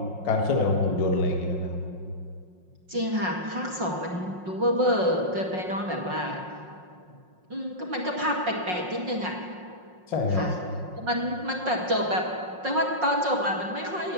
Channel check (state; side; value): late; left; 5.5 ms